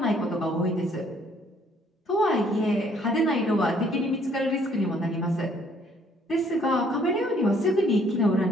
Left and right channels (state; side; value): normal; both; correlation 0.63